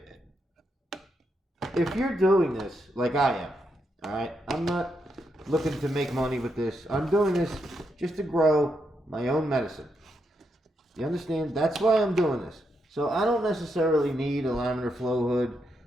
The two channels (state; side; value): normal; both; correlation 0.81